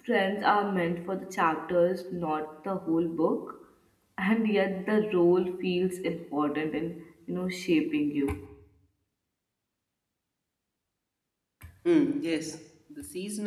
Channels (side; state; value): both; identical; correlation 1.00